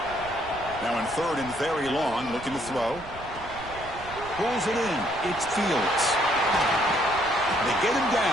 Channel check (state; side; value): noise; right; rumble, 16 dB below the sound